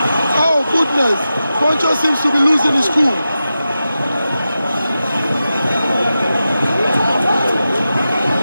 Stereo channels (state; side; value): inverted; both; correlation -0.92